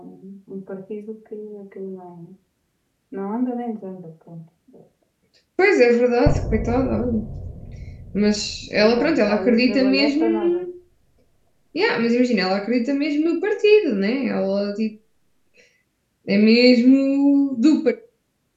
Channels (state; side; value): identical; both; correlation 1.00